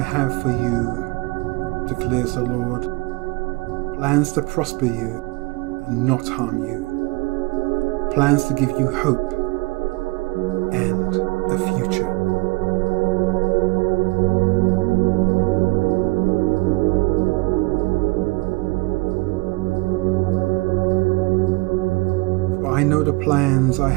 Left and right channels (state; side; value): quieter; left; 25.2 dB